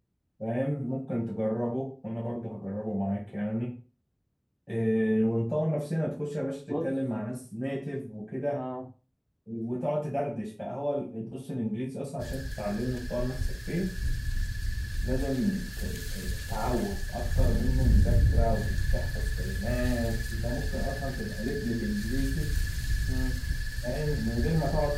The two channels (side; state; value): both; identical; correlation 1.00